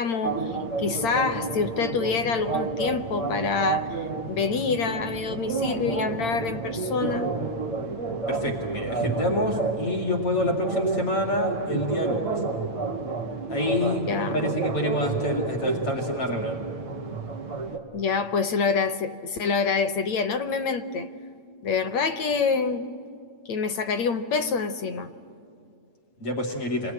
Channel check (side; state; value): right; late; 8.8 ms